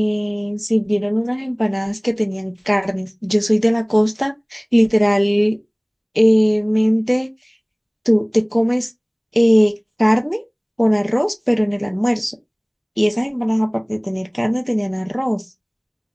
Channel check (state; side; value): identical; both; correlation 1.00